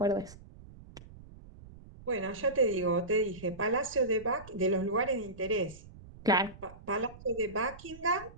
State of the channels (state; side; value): noise; right; rumble, 19 dB below the sound